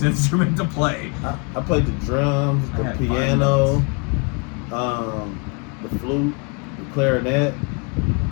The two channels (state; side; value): quieter; right; 33.1 dB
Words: instrument to play. I played the drums, the piano, the flute, the clarinet.